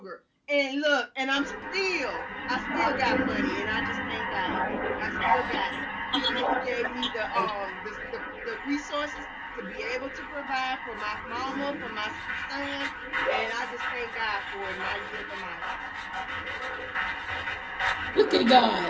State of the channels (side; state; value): both; identical; correlation 1.00